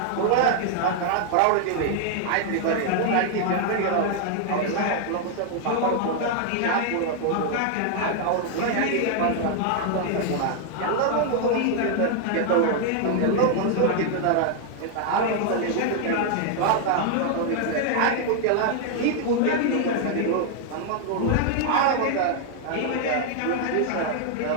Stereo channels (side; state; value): both; different; correlation 0.00